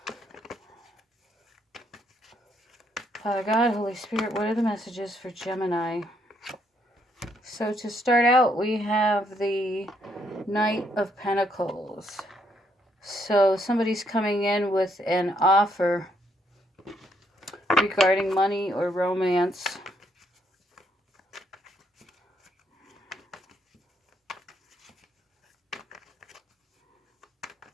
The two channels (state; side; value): normal; both; correlation 0.73